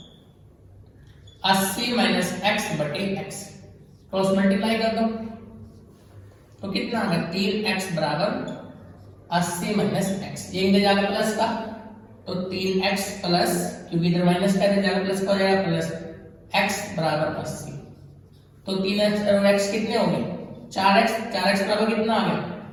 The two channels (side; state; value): both; identical; correlation 1.00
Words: 80 माइनस x बटे x। क्रॉस मल्टीप्लाई कर दो तो कितना आ गया 3x बराबर 80 माइनस x। ये इधर जाकर प्लस का, तो 3x प्लस, क्योंकि इधर माइनस का इधर जाकर प्लस का हो जाएगा, प्लस x बराबर 80। तो 3x और x कितने हो गए 4x, 4x बराबर कितना आ गया